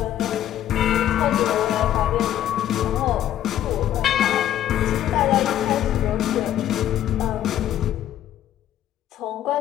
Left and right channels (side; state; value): right; quieter; 11.7 dB